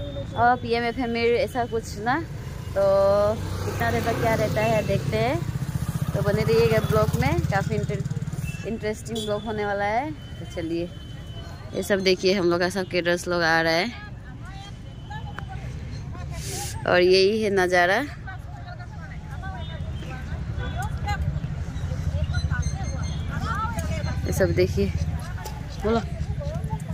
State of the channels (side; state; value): both; identical; correlation 1.00